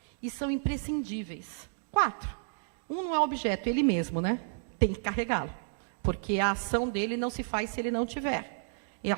E são imprescindíveis. 4. Um não é objeto, ele mesmo, né? Tem que carregá-lo. Porque a ação dele não se faz se ele não tiver. E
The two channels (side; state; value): left; silent; digital silence